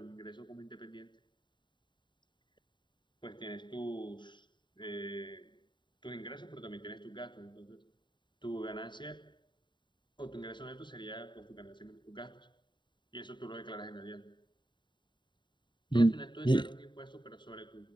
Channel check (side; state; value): right; late; 0.23 ms